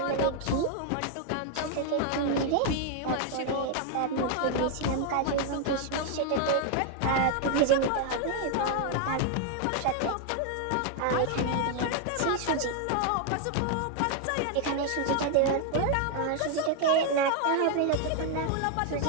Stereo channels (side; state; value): both; different; correlation 0.00